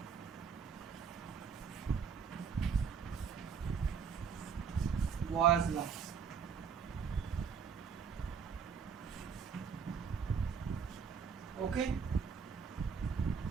Boyle's law. Okay.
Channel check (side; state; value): left; quieter; 6.4 dB